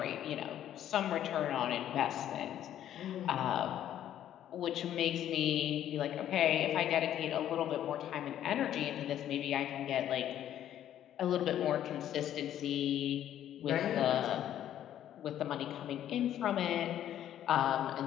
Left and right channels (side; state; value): right; quieter; 11.2 dB